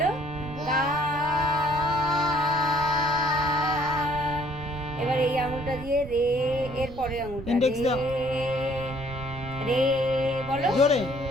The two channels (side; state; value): right; noise; rumble, 15 dB below the sound